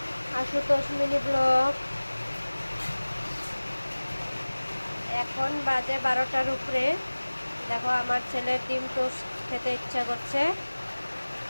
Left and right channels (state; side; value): inverted; both; correlation -1.00